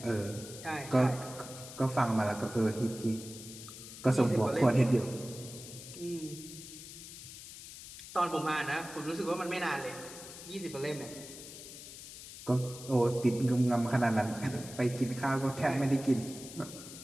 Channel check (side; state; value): left; noise; hiss, 13 dB below the sound